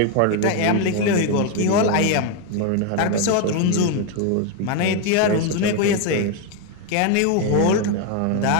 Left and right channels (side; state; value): both; different; correlation 0.01